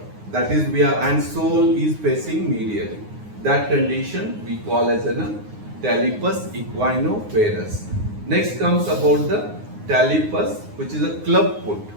That is we are, and sole is facing medially. That condition we call as a talipus equino-varus. Next comes about the talipus, which is a club foot.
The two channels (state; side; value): late; left; 9.6 ms